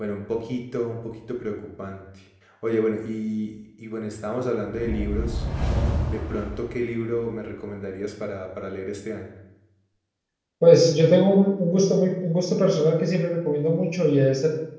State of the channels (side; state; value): both; identical; correlation 1.00